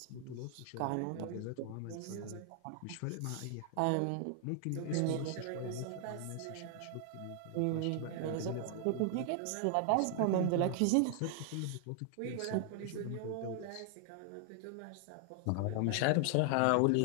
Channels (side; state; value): both; different; correlation 0.00